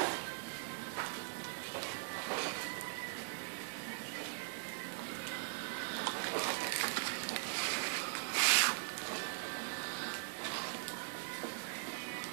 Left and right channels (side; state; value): left; silent; digital silence